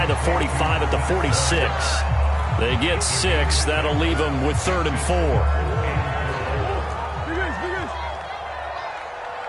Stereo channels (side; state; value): both; identical; correlation 1.00